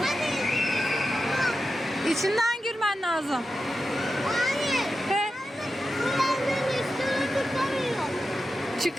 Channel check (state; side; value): normal; both; correlation 0.91